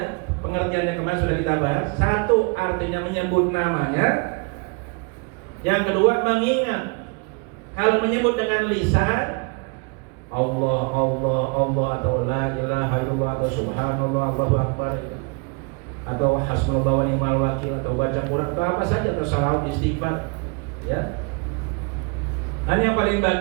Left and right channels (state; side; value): quieter; left; 32.8 dB